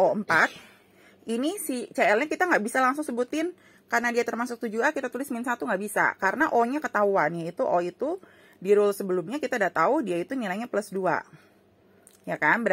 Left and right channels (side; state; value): both; identical; correlation 1.00